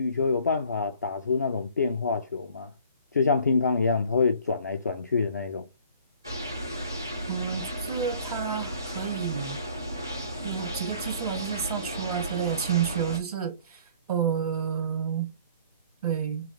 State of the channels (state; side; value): inverted; both; correlation -0.53